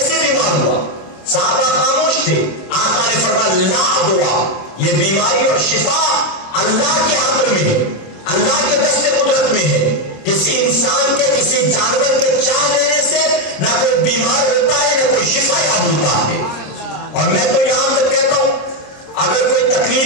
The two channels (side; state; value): right; late; 26 ms